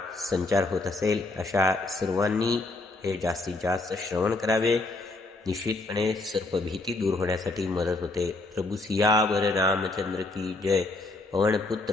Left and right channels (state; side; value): quieter; right; 3.1 dB